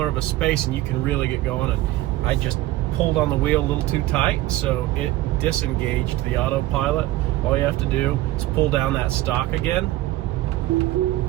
of a space and you can really get going. And I just pulled on the wheel a little too tight, so it disengaged the autopilot. All you have to do is pull down that stalk again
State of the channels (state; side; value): quieter; left; 16.5 dB